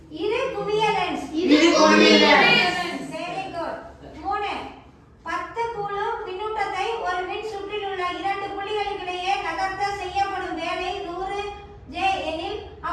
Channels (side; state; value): both; identical; correlation 1.00